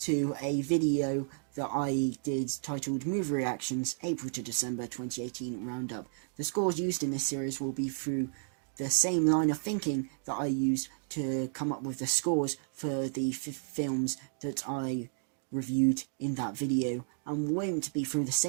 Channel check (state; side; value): silent; left; digital silence